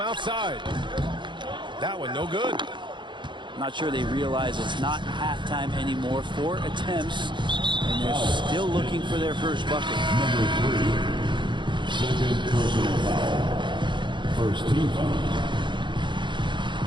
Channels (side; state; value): left; late; 0.23 ms